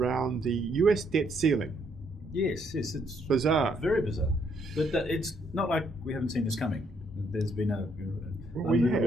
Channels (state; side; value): normal; both; correlation 0.71